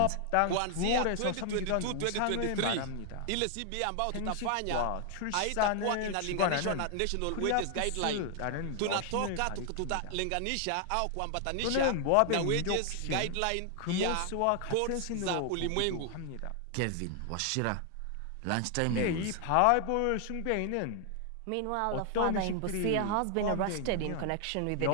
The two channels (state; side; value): different; both; correlation 0.00